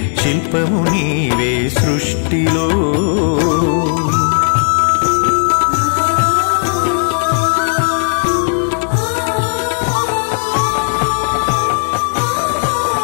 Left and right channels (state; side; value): silent; right; digital silence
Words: శిల్పము నీవే సృష్టిలో.